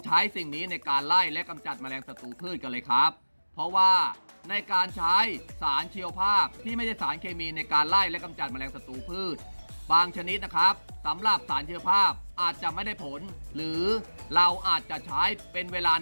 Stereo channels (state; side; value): inverted; both; correlation -1.00